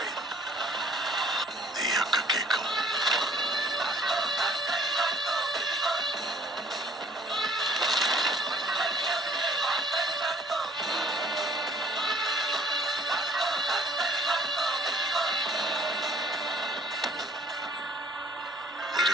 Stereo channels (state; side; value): normal; both; correlation 0.56